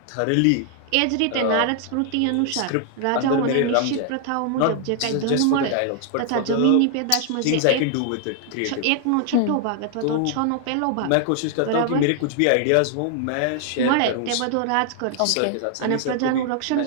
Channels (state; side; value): different; both; correlation 0.00